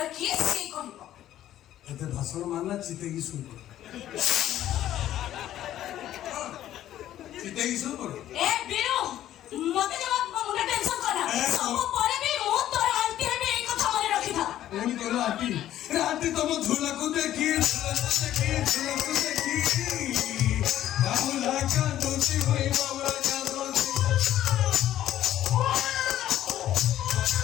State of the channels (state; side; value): quieter; right; 12.5 dB